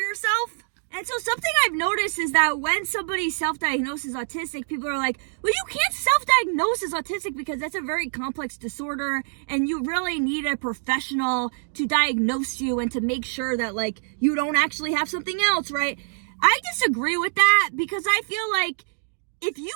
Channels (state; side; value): silent; left; digital silence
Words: And so something I've noticed is that when somebody self-diagnoses autistic, people are like, well, you can't self-diagnose as autistic because that's a very complex disorder and you really need a professional to diagnose you and to make sure that like you don't actually have something else, right? I disagree with that because I feel like if you